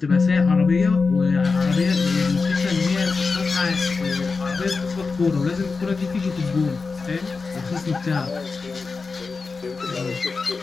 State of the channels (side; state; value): right; quieter; 4.4 dB